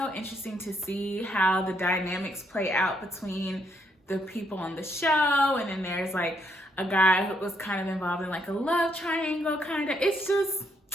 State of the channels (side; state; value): both; normal; correlation 0.74